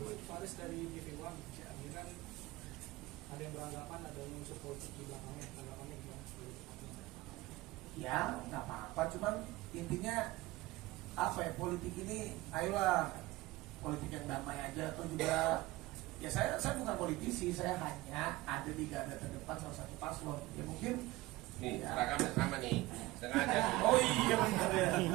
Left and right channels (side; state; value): left; quieter; 19.2 dB